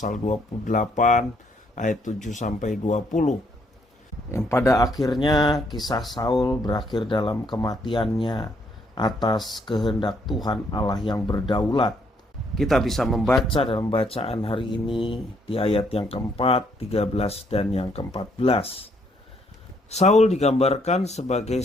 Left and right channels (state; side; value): normal; both; correlation 0.70